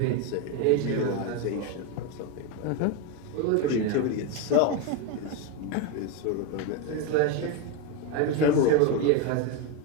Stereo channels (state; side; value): different; both; correlation 0.04